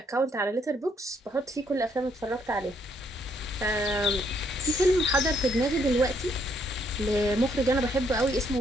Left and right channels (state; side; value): normal; both; correlation 0.71